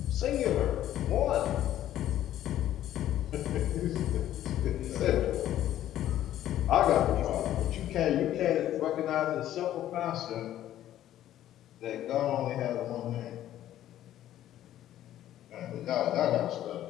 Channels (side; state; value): right; quieter; 12.5 dB